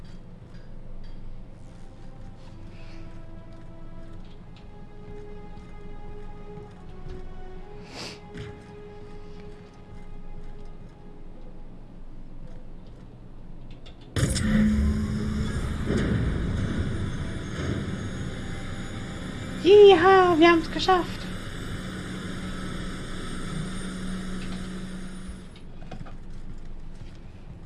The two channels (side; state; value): both; identical; correlation 1.00